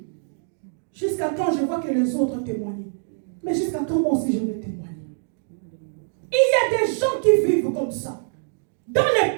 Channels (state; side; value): silent; left; digital silence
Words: Jusqu'à quand je vois que les autres témoignent? Mais jusqu'à quand moi aussi je vais témoigner? Il y a des gens qui vivent comme ça. Dans les